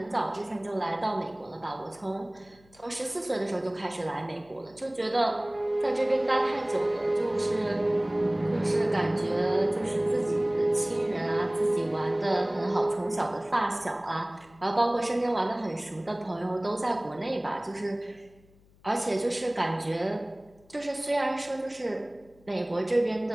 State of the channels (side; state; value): left; noise; hum, 29 dB below the sound